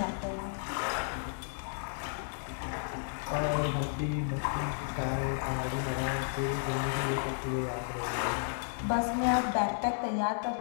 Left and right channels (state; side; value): silent; right; digital silence